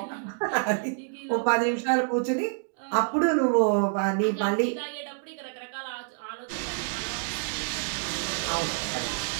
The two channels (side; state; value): left; silent; 60 dB below the other